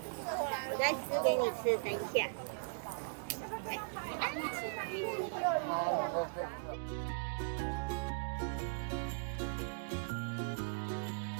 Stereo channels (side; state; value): left; silent; digital silence